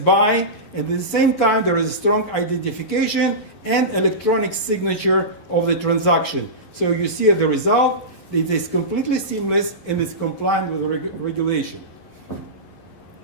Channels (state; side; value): late; right; 11 ms